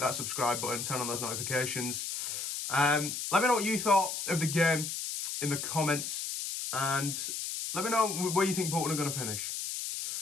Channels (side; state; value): left; noise; hiss, 4 dB below the sound